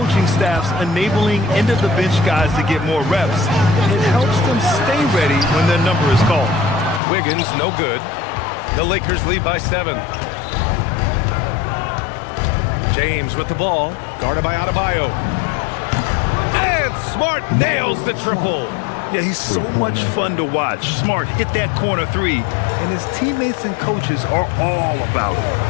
staffs enabling end-of-the-bench guys to get more reps, it helps them stay ready when their number is called. Wiggins, no good. The Lakers lead by 7. James with the ball, guarded by Adebayo. And Smart nails the triple. Yeah, he's so much fun to watch. Smart hit that corner 3, and his teammates and coaches are all about it.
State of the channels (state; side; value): drops out; right; at 7.0 s